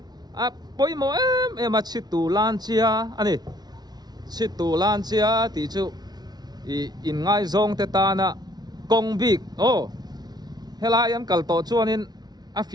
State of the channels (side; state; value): left; late; 0.19 ms